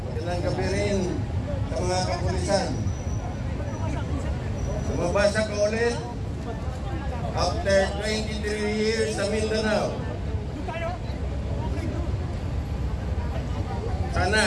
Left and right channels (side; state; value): both; identical; correlation 1.00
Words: magandang gabi rin sa mga kapulisan. Sumabasa ka ulit after 23 years sa Mindanao.